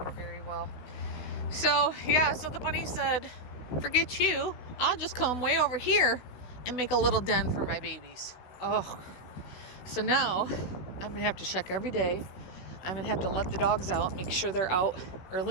very well. So, yeah, so the bunny said, forget you. I'll just come way over here and make a little den for my babies. Oh, so now I'm going to have to check every day. I'm going to have to let the dogs out, make sure they're out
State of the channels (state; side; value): late; right; 16 ms